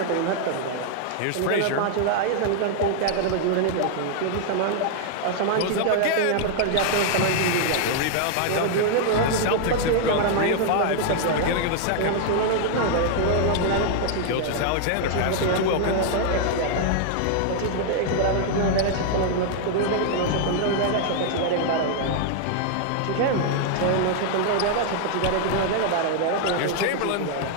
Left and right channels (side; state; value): both; different; correlation 0.00